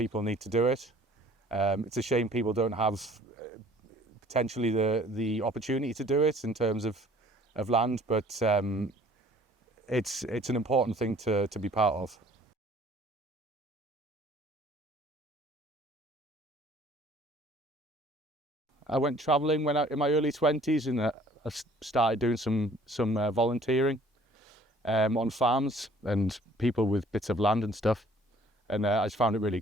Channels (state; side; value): normal; both; correlation 0.55